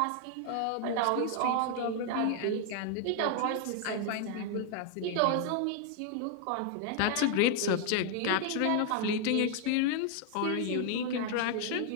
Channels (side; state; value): both; different; correlation 0.00